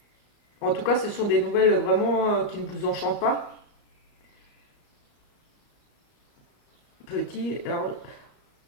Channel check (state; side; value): late; right; 34 ms